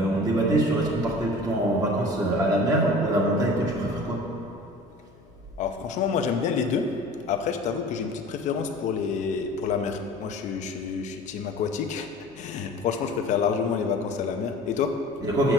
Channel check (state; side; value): noise; left; hum, 27 dB below the sound